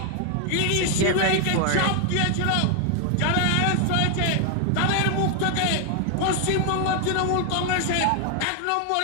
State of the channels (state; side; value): different; both; correlation 0.00